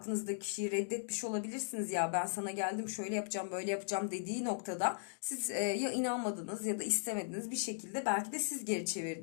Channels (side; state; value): right; silent; digital silence